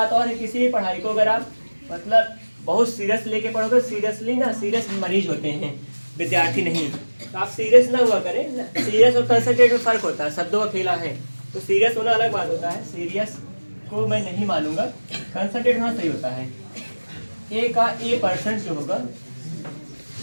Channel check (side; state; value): both; inverted; correlation -1.00